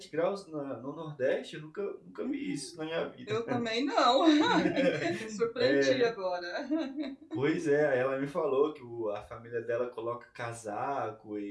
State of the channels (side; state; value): both; identical; correlation 1.00